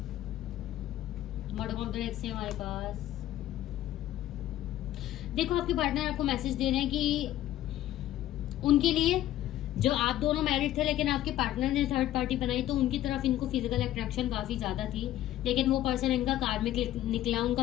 बॉटम ऑफ द डेक से हमारे पास देखो आपके पार्टनर आपको मैसेज दे रहे हैं कि उनके लिए जो आप दोनों मैरिड थे लेकिन आपके पार्टनर ने थर्ड पार्टी बनाई, तो उनकी तरफ इनको फिजिकल अट्रैक्शन काफी ज्यादा थी, लेकिन वो पर्सन इनका कार्मिक निकला,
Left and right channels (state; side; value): quieter; right; 13.4 dB